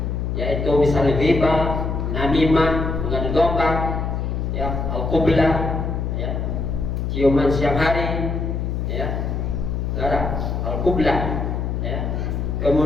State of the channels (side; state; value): left; noise; hum, 1 dB below the sound